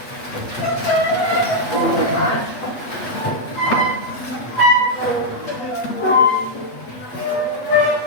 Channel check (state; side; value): late; right; 8.2 ms